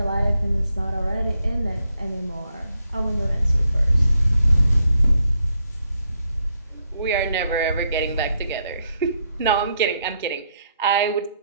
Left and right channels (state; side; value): inverted; both; correlation -0.77